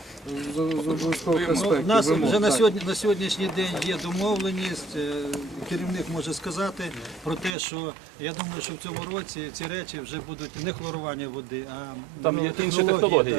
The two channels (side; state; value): left; drops out; at 7.6 s